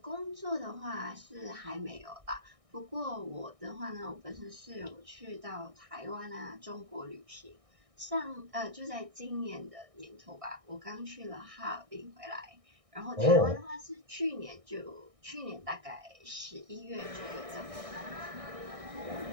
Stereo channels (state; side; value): late; left; 1.6 ms